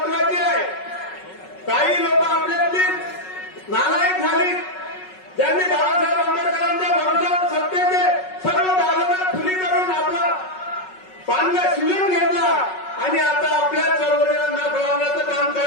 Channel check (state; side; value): late; right; 5.4 ms